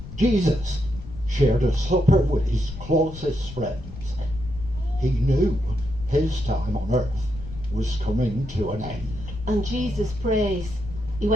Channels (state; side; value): noise; left; rumble, 12 dB below the sound